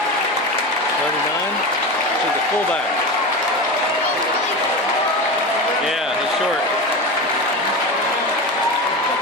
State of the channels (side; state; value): both; normal; correlation 0.24